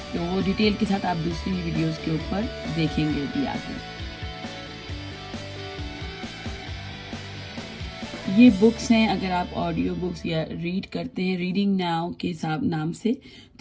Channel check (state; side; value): identical; both; correlation 1.00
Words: तो वो डिटेल के साथ आप दूसरी वीडियोस के ऊपर देखेंगे भी आगे। ये बुक्स हैं, अगर आप ऑडियो बुक्स या रीड करते हैं रीडिंग नाउ के नाम से,